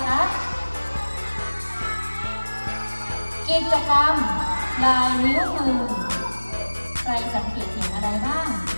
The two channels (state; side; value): inverted; both; correlation -1.00